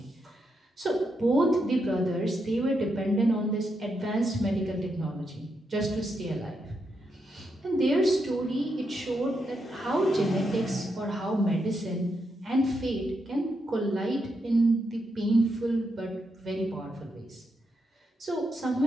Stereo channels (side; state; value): both; normal; correlation 0.82